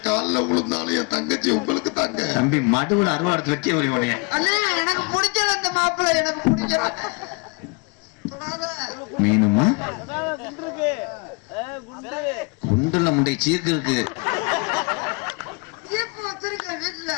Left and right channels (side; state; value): right; quieter; 30.6 dB